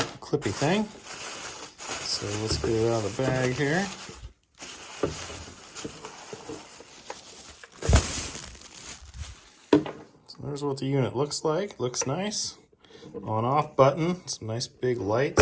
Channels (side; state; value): both; identical; correlation 1.00